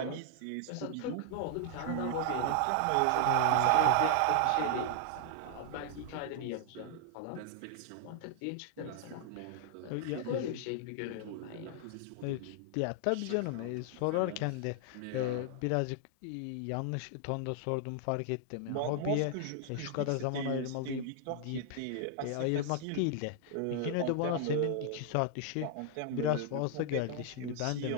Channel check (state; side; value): different; both; correlation -0.01